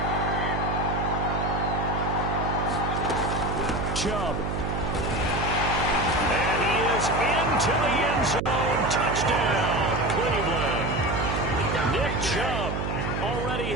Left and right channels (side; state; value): right; noise; hum, 2 dB below the sound